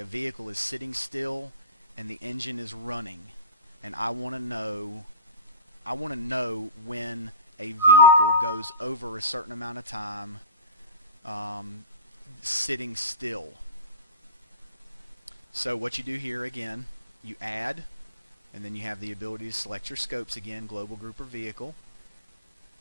vehicle is sitting still and the engine is running, and I want to know when a vehicle goes over a certain amount of time sitting still. So what you do here again, you add, and then you have the ability to select your scopes again, global, group, or vehicle.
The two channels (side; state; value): both; inverted; correlation -0.32